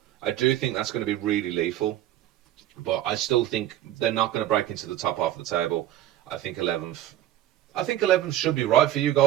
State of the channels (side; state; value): left; quieter; 13.1 dB